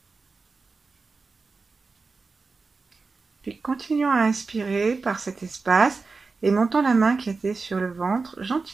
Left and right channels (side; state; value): left; quieter; 4.2 dB